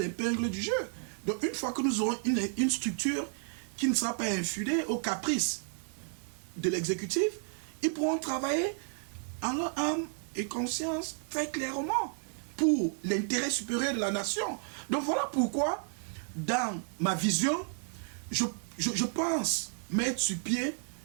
l'épingle du jeu. Donc, une fois que nous aurons une structure qui ne sera pas infidèle aux caprices de l'exécutif, ils pourront travailler en leur âme et conscience très clairement pour l'intérêt supérieur de la nation. Donc, voilà pourquoi, dans ma vision, je pense mettre sur pied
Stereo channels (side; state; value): left; silent; 56 dB below the other